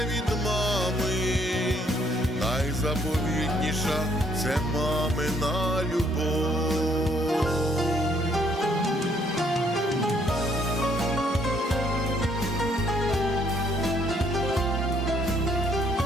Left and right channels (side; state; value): both; normal; correlation 0.67